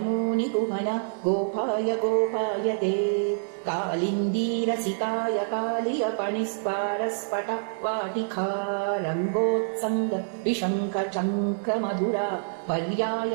गोपाय गोपायते कालिन्दीरसिकाय कालियपणिस्पारस्फट वाटिका रङ्गोत्सङ्ग विशङ्ख चङ्क्रमधुरा पर्याय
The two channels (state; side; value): silent; left; digital silence